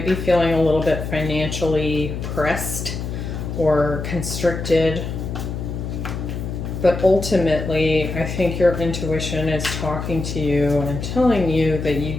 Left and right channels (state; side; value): noise; left; hum, 5 dB below the sound